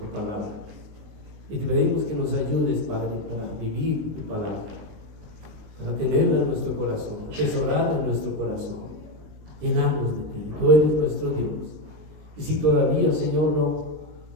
palabra y te pedimos que nos ayudes, Padre, para vivir tu palabra, para tenerla en nuestro corazón, atesorarla en nuestro corazón, llenarnos de ti. Tú eres nuestro Dios. Y si todavía, Señor,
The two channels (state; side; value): late; left; 19 ms